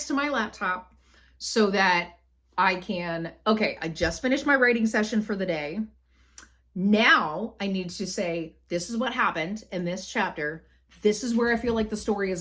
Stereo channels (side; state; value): both; identical; correlation 1.00